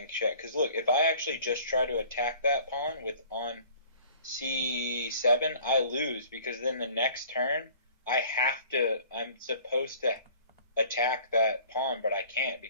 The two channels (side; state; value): both; inverted; correlation -0.50